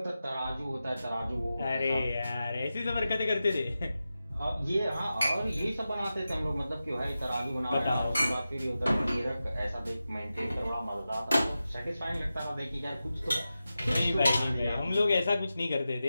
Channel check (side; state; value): both; inverted; correlation -0.92